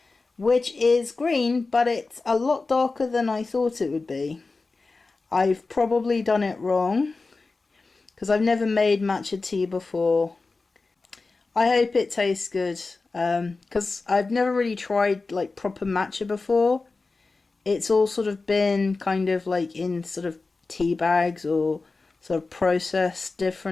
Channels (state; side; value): quieter; right; 3.8 dB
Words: which is green, but it's a lot darker than I thought it would be. I've probably done it wrong, because I've never made matcha tea before. I hope it tastes good, because I've never really tried like proper matcha before. It's all sort of been kind of like in sort of tea bags or sort of processed